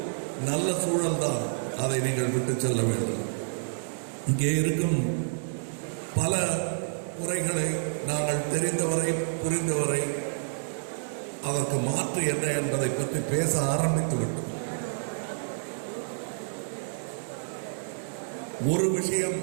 நல்ல சூழல் தான், அதை நீங்கள் விட்டு செல்ல வேண்டும். இங்கே இருக்கும் பல குறைகளை நாங்கள் தெரிந்தவரை புரிந்தவரை அதற்கு மாற்று என்ன என்பதை பற்றி பேச ஆரம்பித்து விட்டோம். ஒரு விஷயம்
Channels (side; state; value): left; silent; digital silence